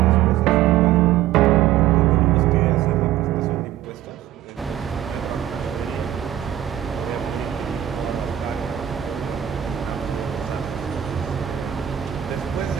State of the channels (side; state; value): left; quieter; 11.9 dB